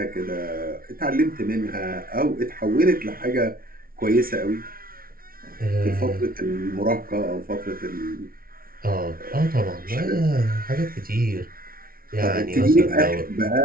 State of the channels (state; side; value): late; left; 0.43 ms